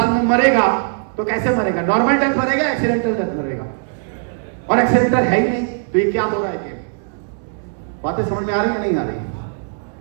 में मरेगा तो कैसे मरेगा? नॉर्मल डेथ मरेगा, एक्सीडेंटल डेथ मरेगा, और एक्सीडेंटल है ही नहीं, तो ये क्या हो रहा है? बातें समझ में आ रही है नहीं आ रही?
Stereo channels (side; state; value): left; silent; 66 dB below the other